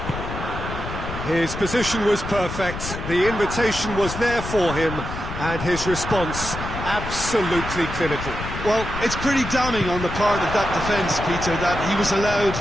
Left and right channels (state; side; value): noise; left; rumble, 7 dB below the sound